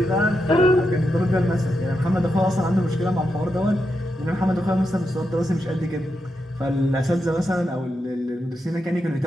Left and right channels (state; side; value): normal; both; correlation 0.85